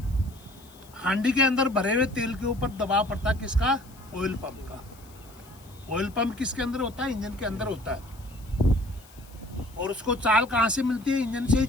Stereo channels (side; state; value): left; noise; hiss, 25 dB below the sound